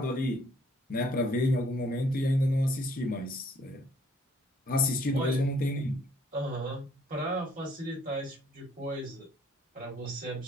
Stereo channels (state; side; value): normal; both; correlation 0.64